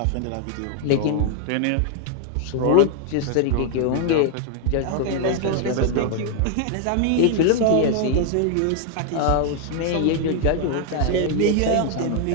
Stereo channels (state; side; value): different; both; correlation 0.00